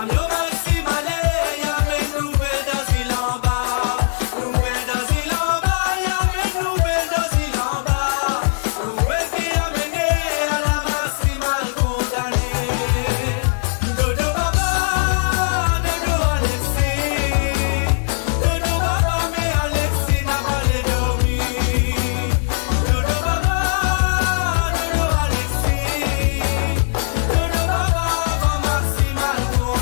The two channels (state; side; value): silent; right; digital silence